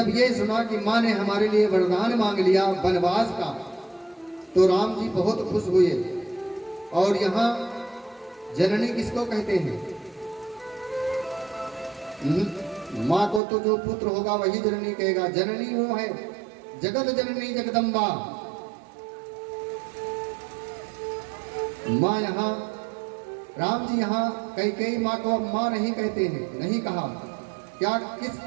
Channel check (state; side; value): drops out; left; at 13.4 s